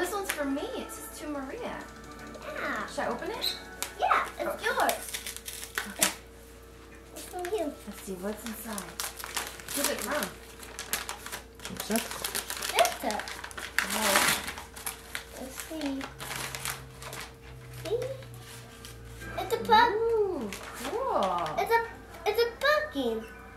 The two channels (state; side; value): identical; both; correlation 1.00